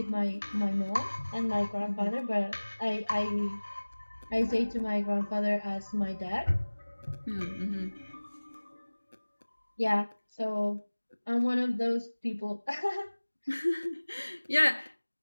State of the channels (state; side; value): inverted; both; correlation -1.00